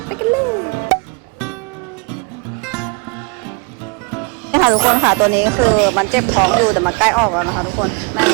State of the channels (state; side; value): quieter; left; 32.8 dB